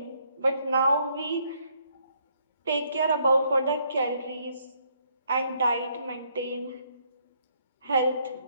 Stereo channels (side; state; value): both; inverted; correlation -0.70